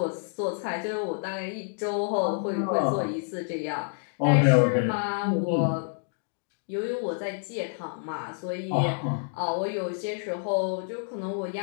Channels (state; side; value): silent; right; digital silence